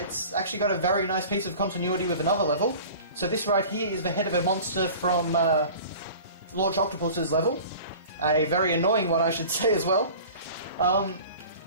It's actually got a very nice piece of continuity with another level. So this right here is the head of a monster from Launch Octopus's level. A very annoying one, I should say, as well.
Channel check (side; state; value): both; inverted; correlation -0.41